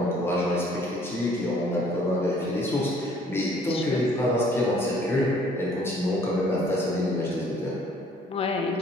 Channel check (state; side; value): normal; both; correlation 0.59